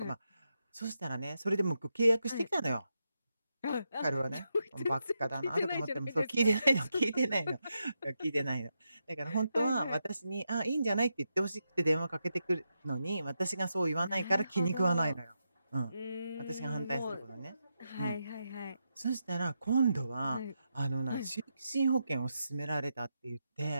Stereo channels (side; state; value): both; inverted; correlation -0.85